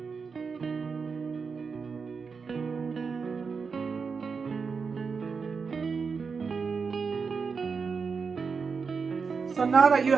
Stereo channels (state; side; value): quieter; left; 5.3 dB